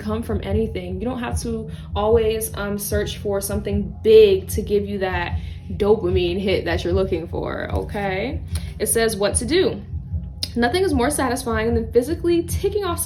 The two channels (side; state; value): both; identical; correlation 1.00